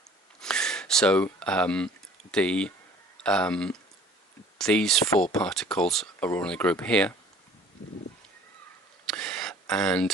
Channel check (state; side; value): normal; both; correlation 0.51